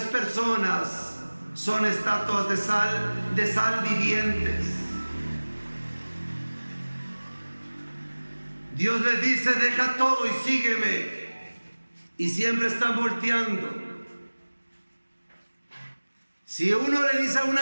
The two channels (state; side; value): inverted; both; correlation -1.00